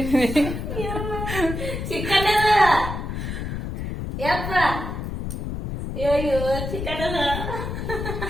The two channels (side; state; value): left; noise; rumble, 5 dB below the sound